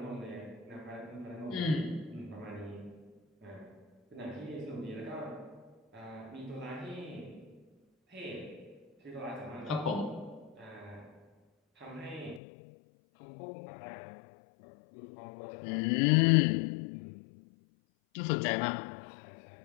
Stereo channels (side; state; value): right; drops out; at 12.4 s